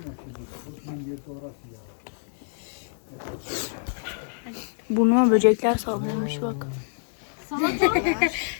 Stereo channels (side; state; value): right; silent; digital silence